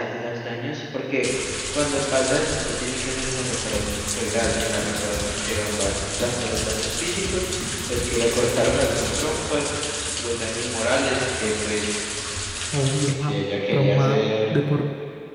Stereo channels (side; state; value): both; identical; correlation 1.00